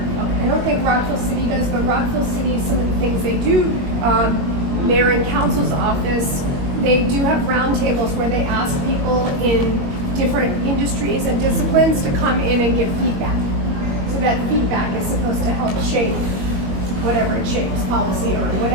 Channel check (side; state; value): left; late; 21 ms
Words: I don't think Rockville City does, but Rockville City, some of the things they do, mayor and council's office, they do have roundtables where they ask people in different industries and disciplines to come in and give feedback. So that feedback is supposed to help shape whatever it shapes, policy or